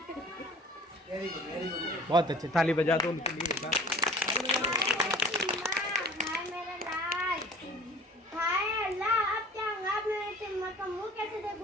बहुत अच्छे, ताली बजा दो उनके लिए। हाय मेरे लाल, हाय अल्लाह, अब क्या होगा? अब मैं टिम्मा का मुंह कैसे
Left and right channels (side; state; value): both; normal; correlation 0.46